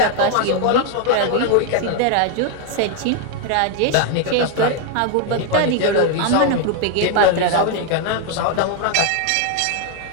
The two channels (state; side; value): different; both; correlation 0.01